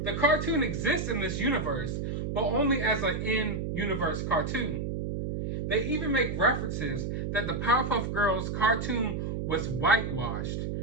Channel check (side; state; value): right; noise; hum, 2 dB below the sound